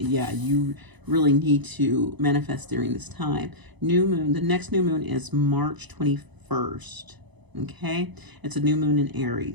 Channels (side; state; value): left; late; 1.0 ms